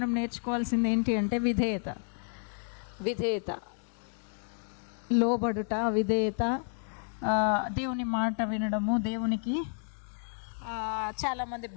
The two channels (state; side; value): silent; right; 57 dB below the other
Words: నేర్చుకోవాల్సింది ఏంటి అంటే విధేయత, లోబడుట, విధేయత, దేవుని మాట వినడము, దేవునికి చాలామంది